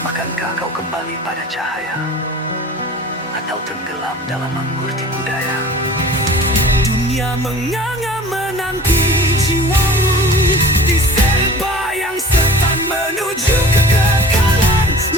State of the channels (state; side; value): normal; both; correlation 0.43